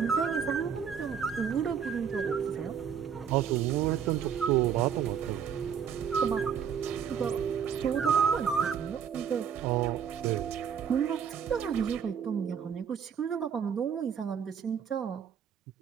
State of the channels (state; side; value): quieter; left; 7.7 dB